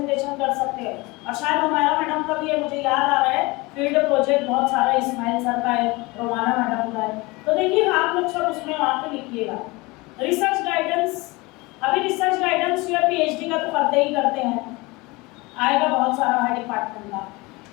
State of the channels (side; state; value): right; quieter; 23.8 dB